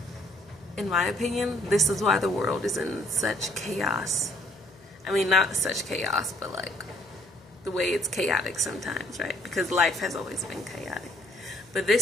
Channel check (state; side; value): noise; left; hum, 27 dB below the sound